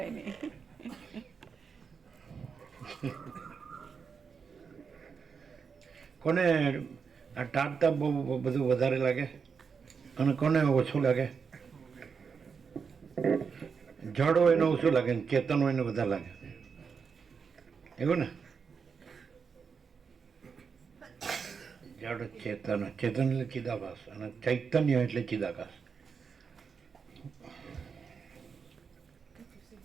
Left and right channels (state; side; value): quieter; left; 5.9 dB